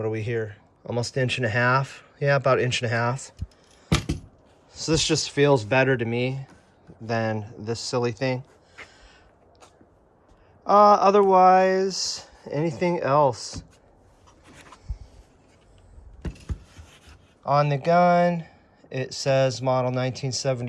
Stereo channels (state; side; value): identical; both; correlation 1.00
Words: are we here? Almost 1.5 inches. Yeah, about 1.5 inches. So this just feels better to me than this silly thing. Otherwise, anything else? On the gun, it says model